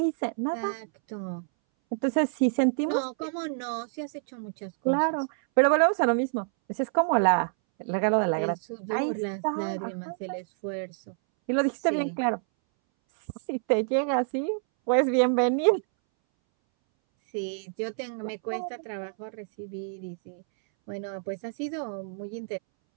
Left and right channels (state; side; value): silent; left; 60 dB below the other